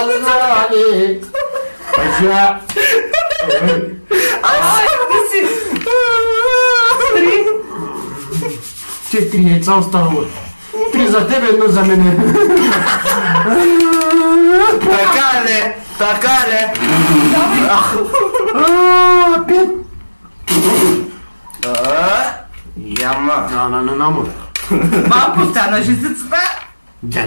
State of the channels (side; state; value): both; inverted; correlation -1.00